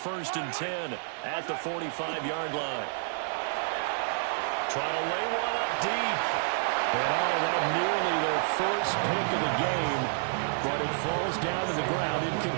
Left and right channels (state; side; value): silent; left; 58 dB below the other